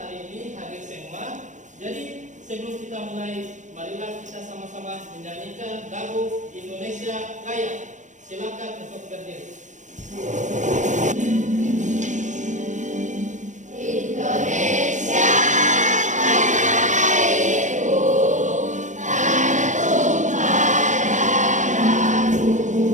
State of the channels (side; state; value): left; late; 0.35 ms